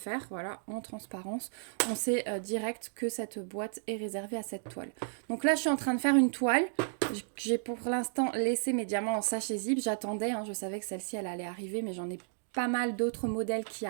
voilà, en transparence. On sait direct que cette boîte est réservée à cette toile. Donc là, je suis en train de faire une toile. J'ai pour l'instant laissé mes diamants en sachet zip. J'attendais, hein, je savais que celle-ci, elle allait arriver, mais j'en ai pas mal d'autres modèles qui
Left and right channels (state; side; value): silent; left; digital silence